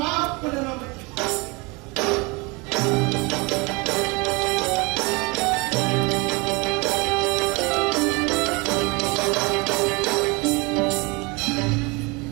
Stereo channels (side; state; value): left; quieter; 27.2 dB